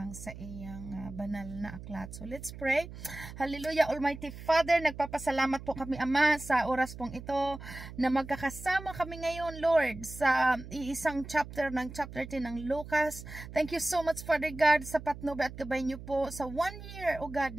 sa iyang banal na aklat. So let's pray. Hallelujah, Almighty Father, nagpapasalamat po kami Ama sa oras pong ito na magkakasama kami ngayon Lord sa iisang chapter ng chapter 10 ng Lucas. Thank you so much Father God sa patnubay at gabay niyo po sa 1 year, O God,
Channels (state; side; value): noise; right; hum, 13 dB below the sound